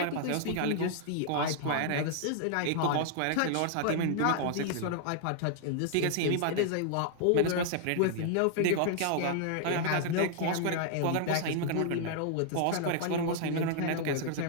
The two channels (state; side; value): different; both; correlation -0.01